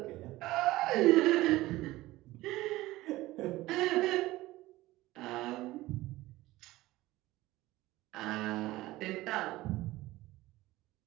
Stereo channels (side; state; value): left; quieter; 17.9 dB